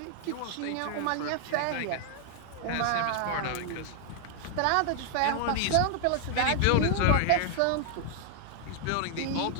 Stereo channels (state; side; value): different; both; correlation 0.00